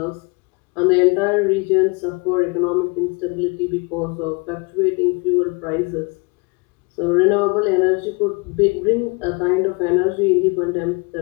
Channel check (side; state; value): right; quieter; 29.6 dB